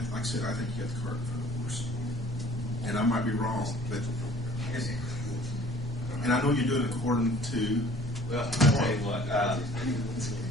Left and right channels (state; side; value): normal; both; correlation 0.52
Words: I said, I think you got the cart in front of the horse. And I might be wrong, but and I know you're doing it according to. Well, I'll tell you what,